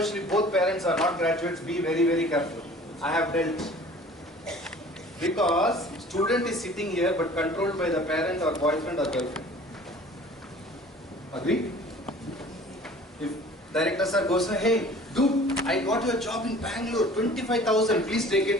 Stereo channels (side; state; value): both; normal; correlation 0.47